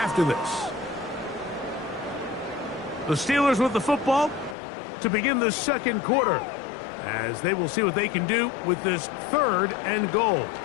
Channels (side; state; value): right; drops out; at 4.5 s